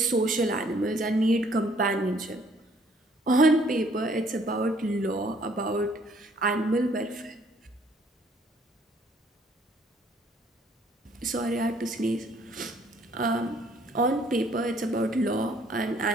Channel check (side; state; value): both; normal; correlation 0.62